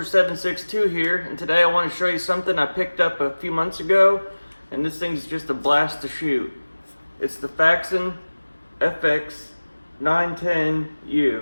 762 here, and today I want to show you something I picked up a few months ago, and this thing's just a blast to shoot. It's the Faxon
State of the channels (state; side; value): inverted; both; correlation -1.00